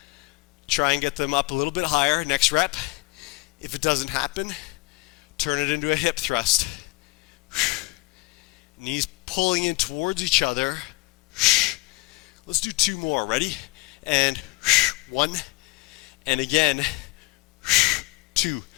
Try and get them up a little bit higher. Next rep. If it doesn't happen, turn it into a hip thrust. Knees pulling in towards each other. Let's do 2 more. Ready? And 1. And again. 2.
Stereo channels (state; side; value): quieter; right; 24.4 dB